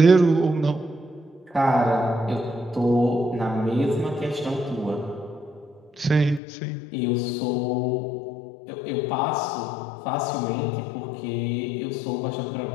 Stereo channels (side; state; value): right; drops out; at 6.4 s